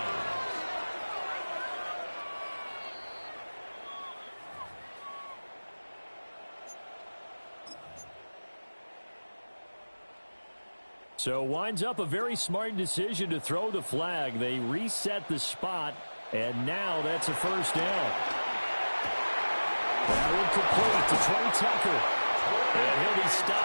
So winds up a very smart decision to throw the flag. They reset the spot, and now that's a first down. Now incomplete to Trey Tucker. And he'll be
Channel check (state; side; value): inverted; both; correlation -1.00